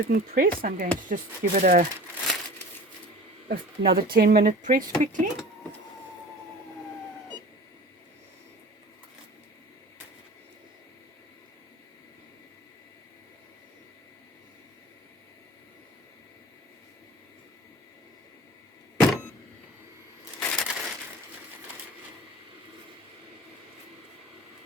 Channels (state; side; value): normal; both; correlation 0.40